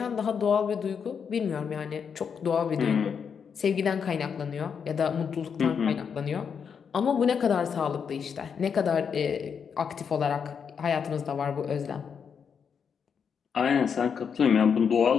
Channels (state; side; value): quieter; right; 6.8 dB